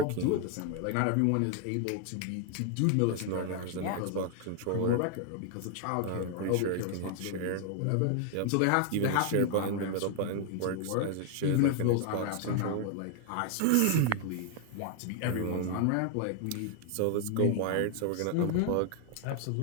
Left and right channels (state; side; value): different; both; correlation 0.00